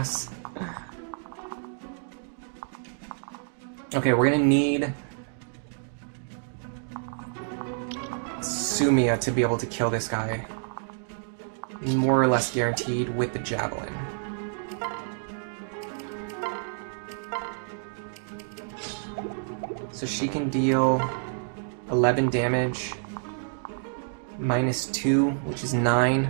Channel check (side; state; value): left; silent; digital silence